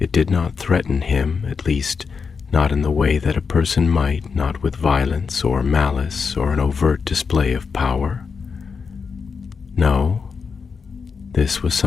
did not threaten him, at least not in the way that a person might, not with violence or malice or an overt display of power. No, this was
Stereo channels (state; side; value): quieter; right; 5.5 dB